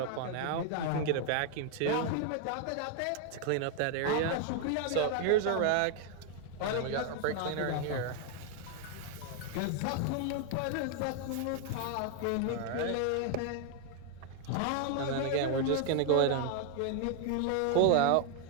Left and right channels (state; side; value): different; both; correlation 0.00